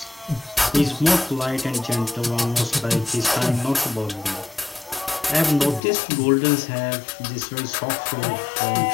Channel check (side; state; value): right; drops out; at 5.8 s